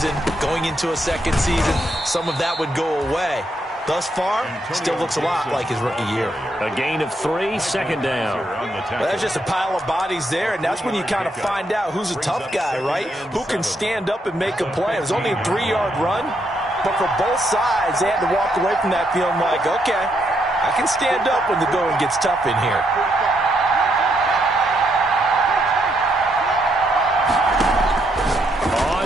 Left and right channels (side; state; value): both; normal; correlation 0.77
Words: going into a second season, some of that would go away. Thus far, still looks a lot like his rookie year. A gain of 3, 2nd down. Well, that's just a pile of bodies there, and that's when you kind of find out who's a tough guy, right? Who can stand up and make a play. It was only a 3-yard run, but for both sides, they had to walk away from that feeling like, okay, I can stand up when the going gets tough in here.